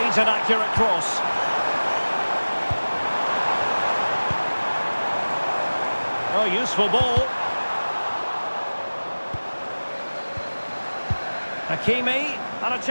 needs an accurate cross. Oh, useful ball. Hakimi, and a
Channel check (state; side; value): inverted; both; correlation -1.00